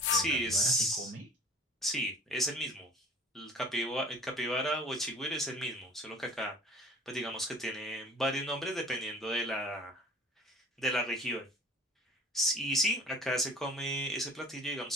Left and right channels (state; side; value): normal; both; correlation 0.47